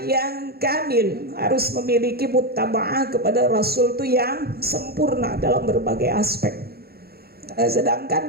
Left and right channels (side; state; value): left; late; 0.45 ms